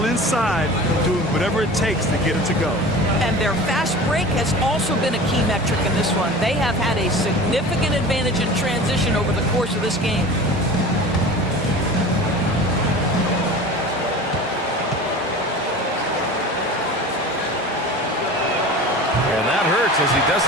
inside, doing whatever it takes to get it to go. And their fast break has also been a key metric in this one. They have had a significant advantage in transition over the course of this game. And that hurts as he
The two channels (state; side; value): normal; both; correlation 0.37